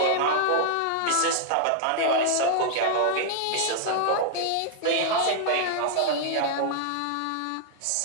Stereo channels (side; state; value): both; different; correlation 0.00